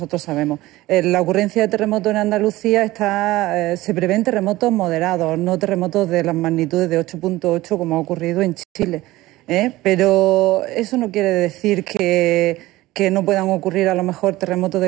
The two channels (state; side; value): quieter; left; 17.9 dB